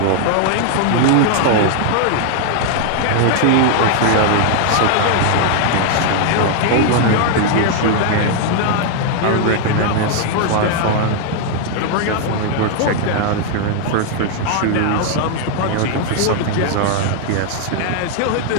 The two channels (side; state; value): both; different; correlation 0.00